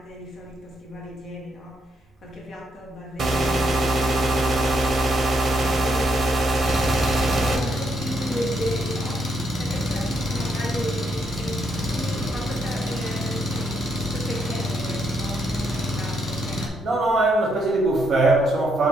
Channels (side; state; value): both; normal; correlation 0.76